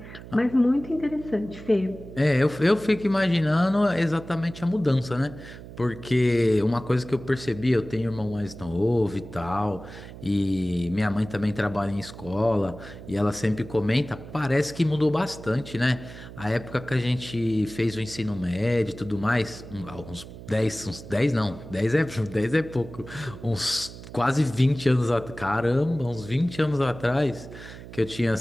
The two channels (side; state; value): right; noise; hum, 15 dB below the sound